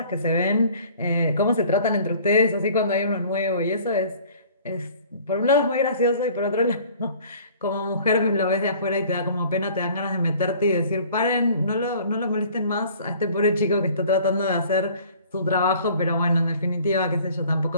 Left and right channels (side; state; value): both; inverted; correlation -0.51